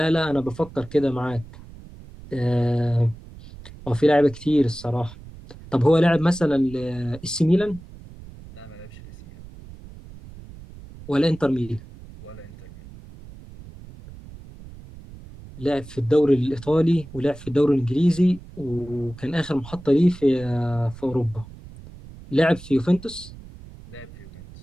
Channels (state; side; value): noise; right; rumble, 17 dB below the sound